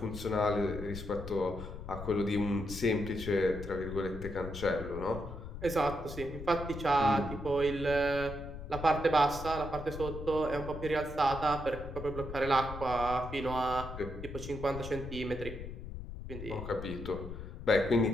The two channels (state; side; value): noise; left; rumble, 10 dB below the sound